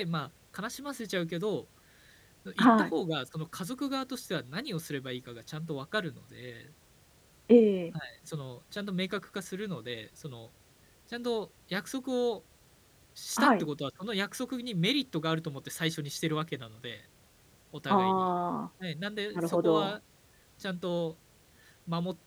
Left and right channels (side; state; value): both; identical; correlation 1.00